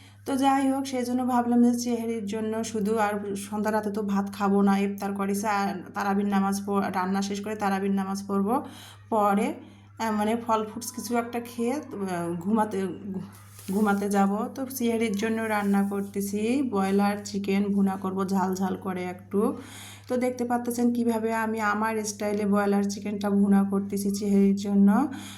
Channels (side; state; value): both; identical; correlation 1.00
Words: তো যাই হোক, সেই জন্য ভাবলাম যে চেহারির জন্য শুধু, আর সন্ধ্যা রাতে তো ভাত খাবো না, ইফতার করেছে আর তারাবির নামাজ রান্না শেষ করে তারাবির নামাজ পড়বো। পরে মানে ফল ফ্রুটস কিছু একটা খেয়ে ঘুমাতে ঘুমাতে যাব। তো সিহারির জন্য রান্না করতেছি ব্রয়লার চিকেন ভুনা করব ঝাল ঝাল করে একটু। তো দেখতে পাচ্ছেন কিভাবে আমি আমার স্টাইলে ব্রয়লার চিকেনটা ভুনা করতেছি চেহারির জন্য।